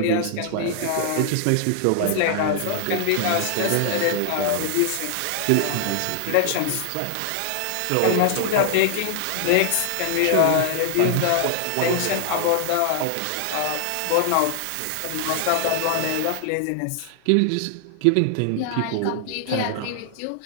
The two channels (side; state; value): both; different; correlation 0.00